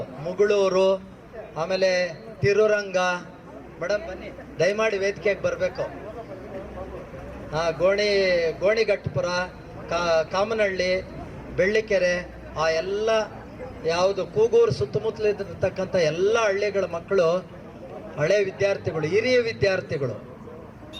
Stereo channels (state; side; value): identical; both; correlation 1.00